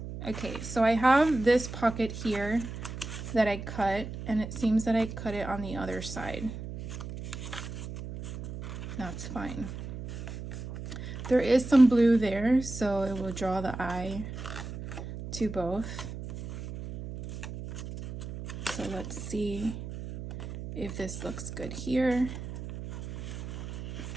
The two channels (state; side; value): noise; right; hum, 9 dB below the sound